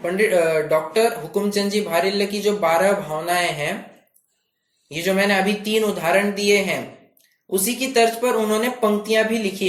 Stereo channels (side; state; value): both; identical; correlation 1.00